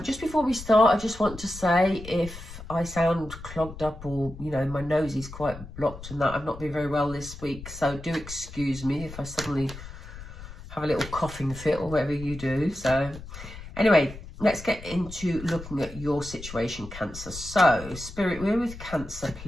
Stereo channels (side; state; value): left; noise; rumble, 13 dB below the sound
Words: Just before we start, I just want to say if I sound clogged up or, my nose is quite blocked and that, I've not been very well this week, so do excuse me if I suddenly have a little coughing fit or whatever you do. So anyway, let's get into looking at your situation, Cancer. So Spirit, we're with Cancer,